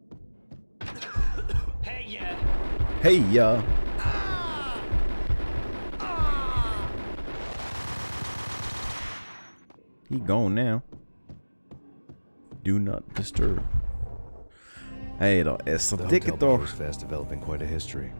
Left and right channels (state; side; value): inverted; both; correlation -1.00